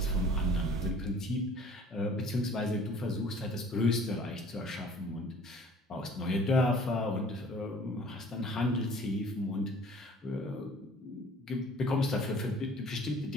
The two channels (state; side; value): normal; both; correlation 0.51